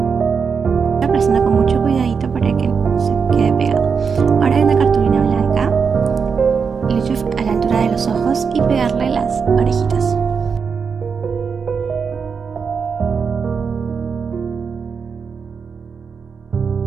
Aplastando con mucho cuidadito para que se quede pegado. Ahora hay una cartulina blanca, lo he hecho a la altura de los ojos y pegarle las orejitas.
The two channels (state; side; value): quieter; left; 5.9 dB